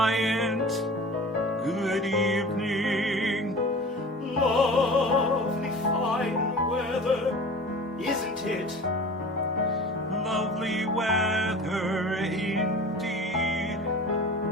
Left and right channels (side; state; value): both; normal; correlation 0.39